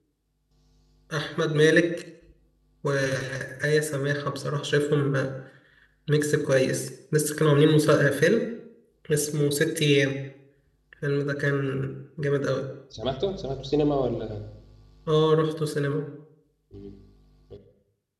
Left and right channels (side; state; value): both; identical; correlation 1.00